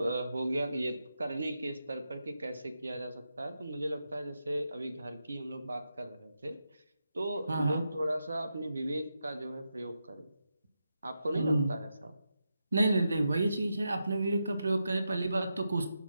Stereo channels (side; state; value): both; inverted; correlation -0.87